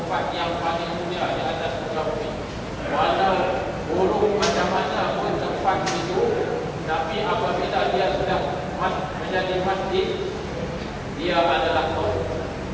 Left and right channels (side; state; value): both; identical; correlation 1.00